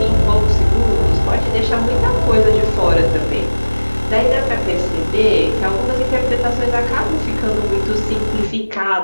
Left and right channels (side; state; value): both; inverted; correlation -1.00